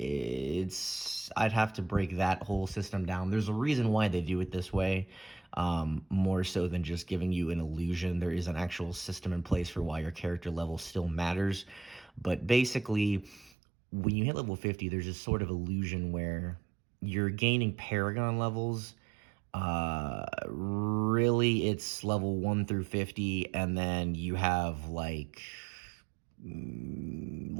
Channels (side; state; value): left; drops out; at 13.5 s